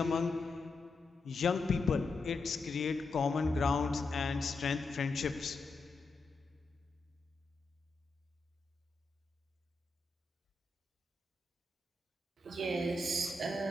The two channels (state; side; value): quieter; right; 3.3 dB